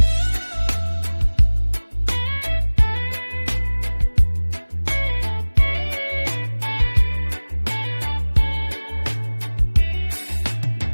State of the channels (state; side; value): inverted; both; correlation -1.00